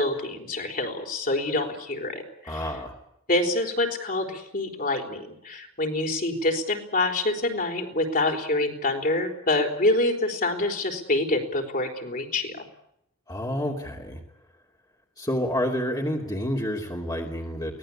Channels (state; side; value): normal; both; correlation 0.15